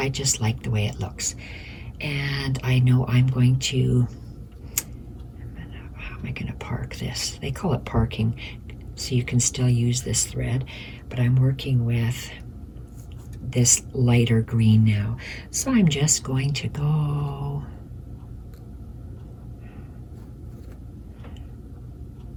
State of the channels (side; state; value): both; identical; correlation 1.00